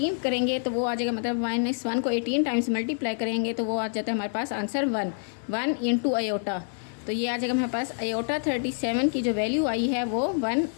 करेंगे तो वो आ जाएगा, मतलब -1 को 18 टाइम्स मल्टीप्लाई करेंगे तो वो आ जाता है हमारे पास आंसर 1 इंटू आयोटा। तो ये आ जाएगा हमारे पास आयोटा 37 की जो वैल्यू आई है वो 1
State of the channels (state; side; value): silent; right; 60 dB below the other